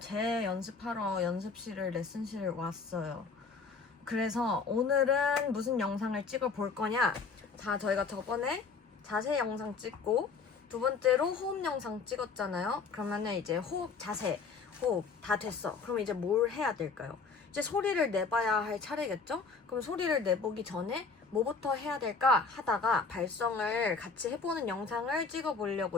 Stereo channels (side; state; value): right; quieter; 4.7 dB